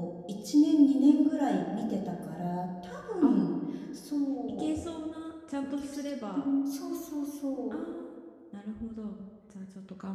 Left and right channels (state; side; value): identical; both; correlation 1.00